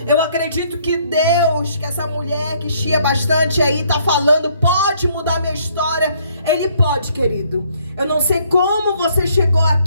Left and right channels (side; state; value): both; inverted; correlation -0.65